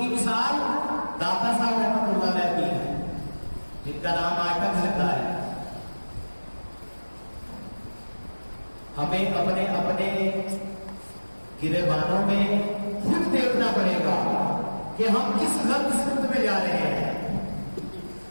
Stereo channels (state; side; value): inverted; both; correlation -1.00